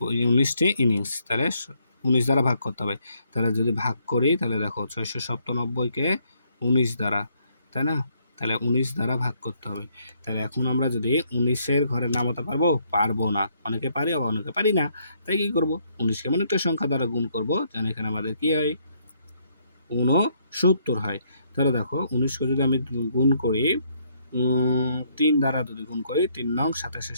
19টি ইনিংস, তাহলে 19 দ্বারা ভাগ করতে হবে। তাহলে যদি ভাগ করি তাহলে দেখো 697কে 19 দ্বারা, তাই না? তাহলে 19 দ্বারা ভাগ করতে হবে। তাহলে এখন আমরা যদি 19-এর ঘরে নামাতে পারবো না, অনেকে পারি আবার অনেকে পারি না, তাই কি করব? 19কে এমন একটা সংখ্যা দ্বারা গুণ করব যেন এখানে আমাদের কি হয়? 69 হয়। তাহলে দেখো 19কে যদি আমি গুণ করি 3 দ্বারা যদি গুণ করি, 3 নং 27-এ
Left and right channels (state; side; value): inverted; both; correlation -0.70